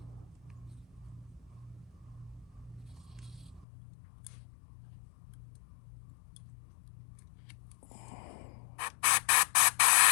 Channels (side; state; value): right; drops out; at 3.7 s